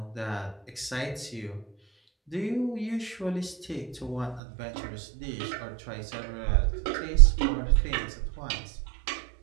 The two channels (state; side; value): drops out; left; at 4.4 s